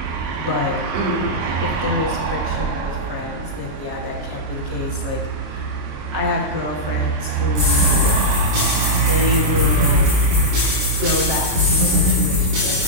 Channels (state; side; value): late; left; 26 ms